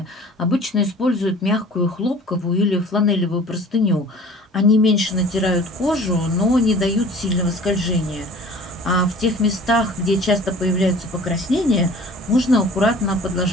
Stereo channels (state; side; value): normal; both; correlation 0.46